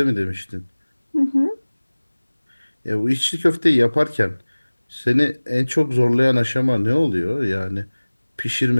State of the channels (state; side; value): inverted; both; correlation -1.00